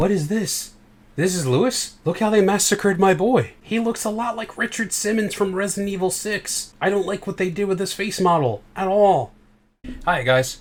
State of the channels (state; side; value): identical; both; correlation 1.00